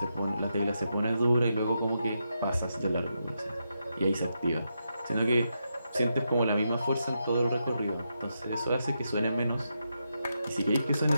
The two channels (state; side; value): inverted; both; correlation -0.84